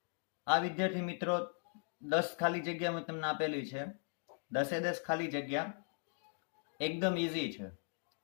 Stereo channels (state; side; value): silent; right; 52 dB below the other